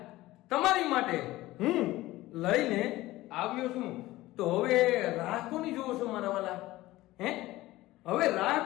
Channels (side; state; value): right; quieter; 17.5 dB